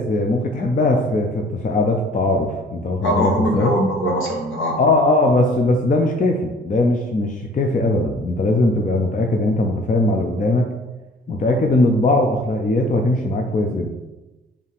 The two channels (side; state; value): both; normal; correlation 0.52